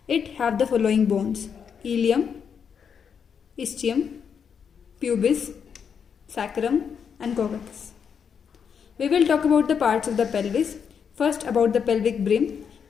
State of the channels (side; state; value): right; quieter; 7.0 dB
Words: It have the following bones: ilium, ischium, pubis, sacrum and coccus. We will talk about the parts of the pelvis. First, about the pelvic brim.